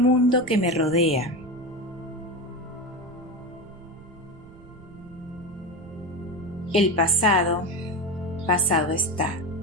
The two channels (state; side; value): noise; right; rumble, 21 dB below the sound